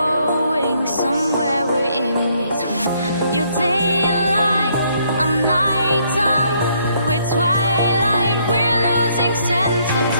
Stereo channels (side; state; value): both; inverted; correlation -0.69